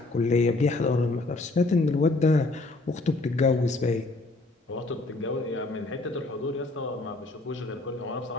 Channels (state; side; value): quieter; right; 3.2 dB